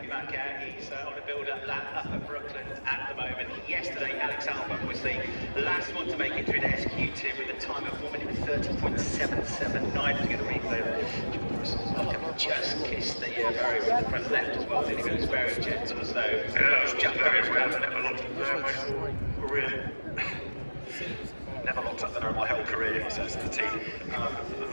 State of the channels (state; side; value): inverted; both; correlation -1.00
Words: yesterday. Alex Albon was the last one to make it through the SQ2 with a time of 1:30.779. To get a replay. Just kissed the barrier with the front left as well. Didn't he? It was very gentle, so it was just very well. Never locked up there in my whole career, he says to the team.